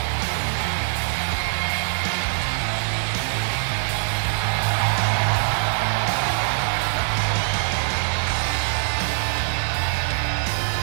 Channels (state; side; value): silent; left; digital silence